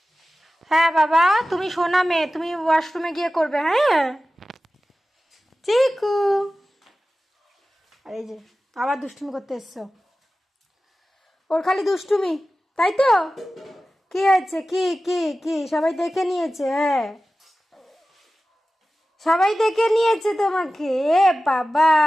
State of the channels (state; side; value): normal; both; correlation 0.95